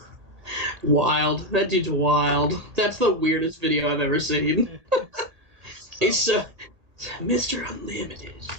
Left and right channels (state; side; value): late; left; 1.8 ms